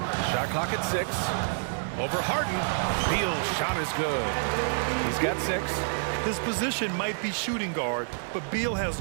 Shot clock at 6. Over Harden. Beal's shot is good. He's got 6. His position might be shooting guard, but Beal has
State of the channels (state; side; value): silent; left; digital silence